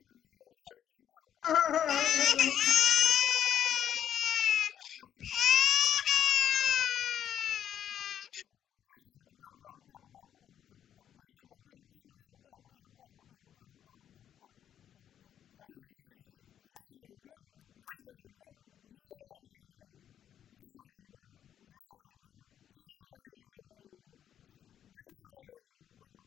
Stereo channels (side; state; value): right; quieter; 9.8 dB